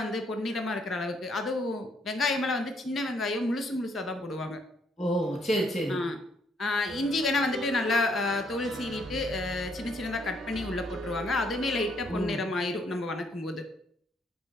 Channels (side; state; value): both; normal; correlation 0.70